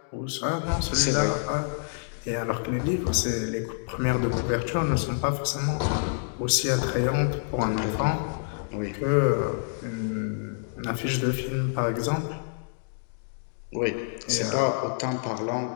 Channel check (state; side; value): silent; right; digital silence